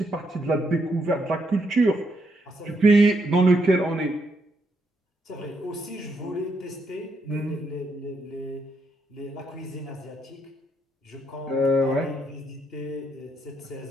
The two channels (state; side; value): normal; both; correlation 0.77